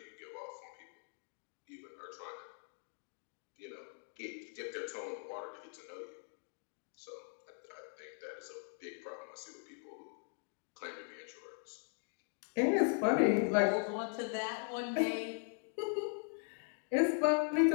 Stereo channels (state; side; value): silent; right; 51 dB below the other